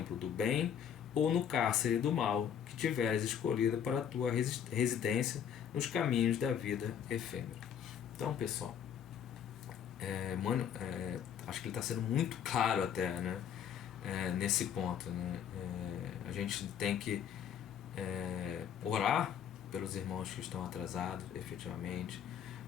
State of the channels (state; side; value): quieter; right; 8.7 dB